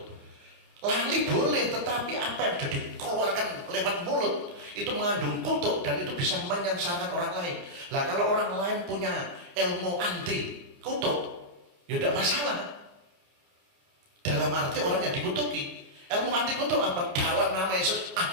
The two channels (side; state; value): left; late; 29 ms